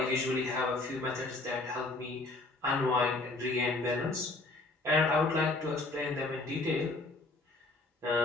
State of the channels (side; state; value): right; quieter; 3.1 dB